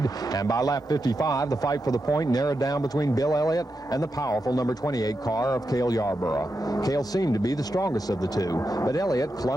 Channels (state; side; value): normal; both; correlation 0.87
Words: and by lap 55, the fight for the point narrowed down between Bill Elliott and the powerful number 28 car of Cale Yarborough. Cale seemed to be the strongest of the two, but Elliott